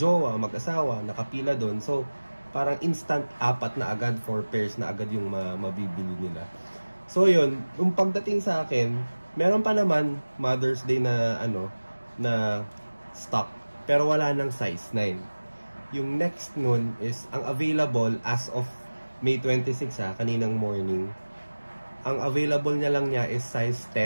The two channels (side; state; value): both; inverted; correlation -1.00